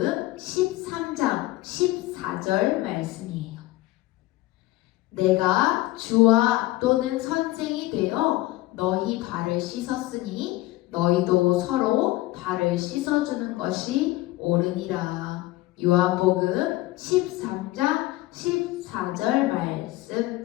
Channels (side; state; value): right; quieter; 18.1 dB